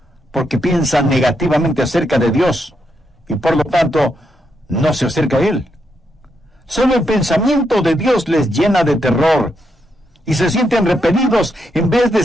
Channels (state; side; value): normal; both; correlation 0.81